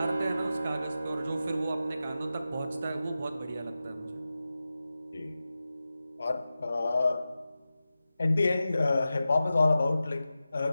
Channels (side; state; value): both; inverted; correlation -0.94